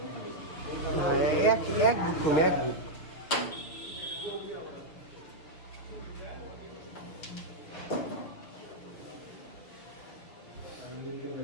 এক বুক কমে এক বুক।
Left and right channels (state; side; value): late; right; 6.3 ms